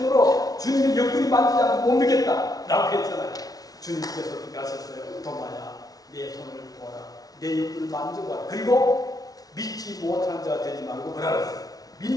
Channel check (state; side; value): late; right; 0.18 ms